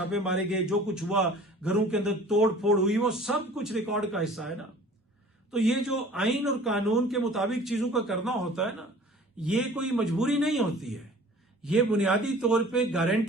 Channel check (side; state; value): both; normal; correlation 0.47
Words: मारे गए, जो कुछ हुआ, घरों के अंदर तोड़ फोड़ हुई, वो सब कुछ रिकॉर्ड का हिस्सा है ना। तो ये जो आइन और कानून के मुताबिक चीजों का करना होता है ना, ये कोई मजबूरी नहीं होती है, ये बुनियादी तौर पे